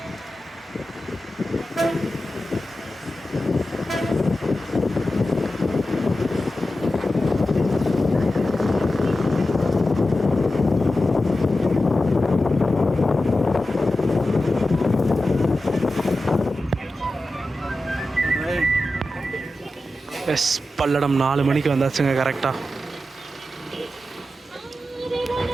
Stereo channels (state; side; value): normal; both; correlation 0.92